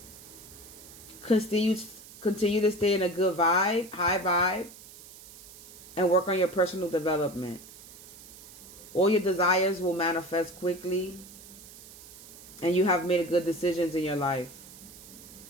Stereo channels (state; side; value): noise; right; hiss, 18 dB below the sound